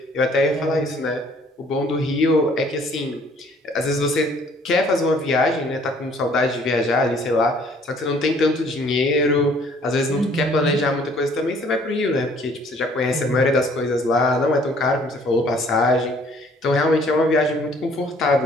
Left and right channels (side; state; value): both; normal; correlation 0.59